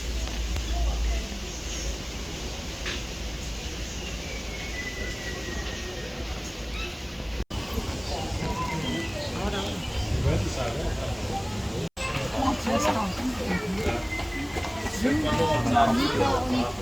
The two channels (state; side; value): identical; both; correlation 1.00